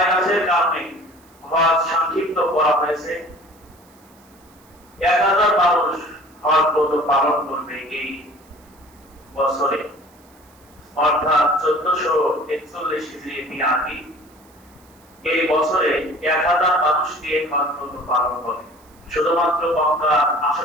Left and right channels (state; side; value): noise; right; hiss, 30 dB below the sound